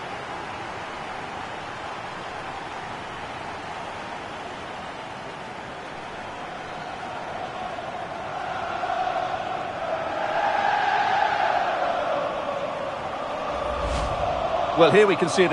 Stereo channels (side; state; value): both; identical; correlation 1.00